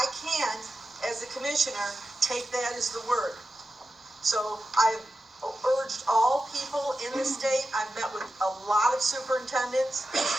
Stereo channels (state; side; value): normal; both; correlation 0.91